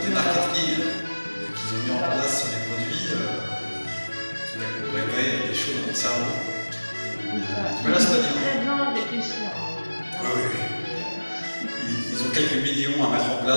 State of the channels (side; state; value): both; inverted; correlation -1.00